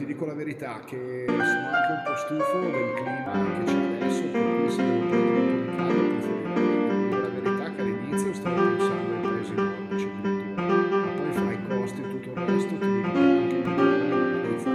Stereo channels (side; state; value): both; identical; correlation 1.00